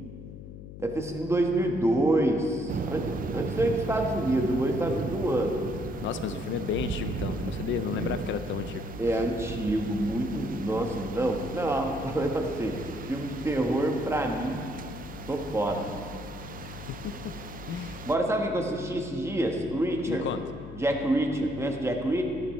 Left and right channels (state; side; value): noise; left; hum, 13 dB below the sound